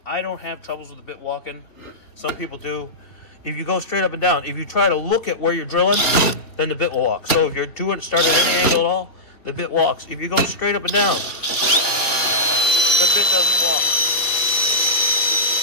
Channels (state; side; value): late; right; 2.7 ms